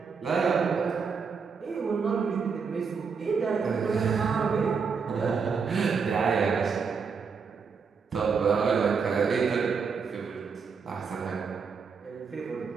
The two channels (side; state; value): left; quieter; 5.7 dB